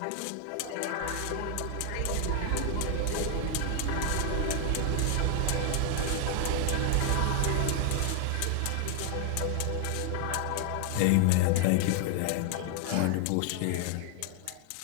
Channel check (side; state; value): both; different; correlation 0.00